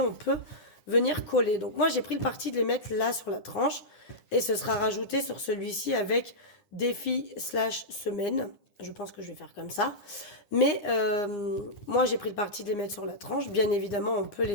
peut venir coller. Donc moi, j'ai pris le parti de les mettre là sur la tranche et ce sera rajouté sur celui-ci avec défi/semaine. Je pense que je vais faire comme ça. Mais moi, j'ai pris le parti de les mettre sur la tranche. Bien évidemment, on peut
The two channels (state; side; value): late; right; 9.8 ms